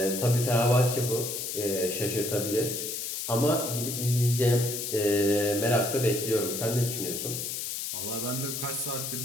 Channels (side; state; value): left; noise; hiss, 4 dB below the sound